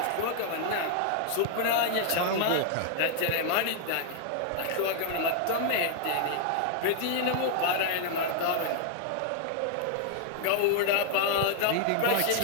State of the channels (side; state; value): both; different; correlation -0.01